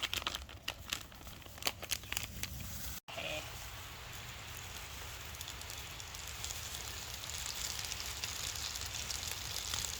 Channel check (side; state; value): both; identical; correlation 1.00